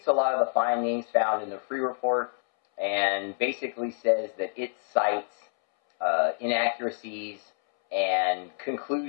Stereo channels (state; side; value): silent; right; 60 dB below the other